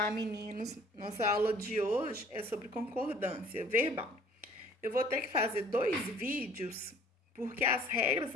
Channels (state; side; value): normal; both; correlation 0.53